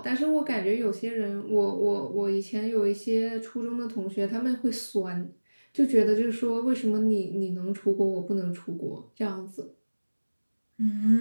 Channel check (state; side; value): inverted; both; correlation -1.00